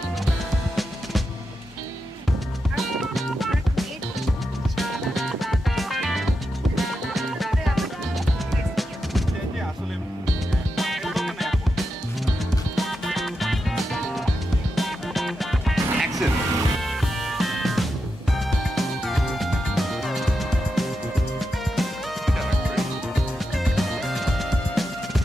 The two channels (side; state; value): both; normal; correlation 0.87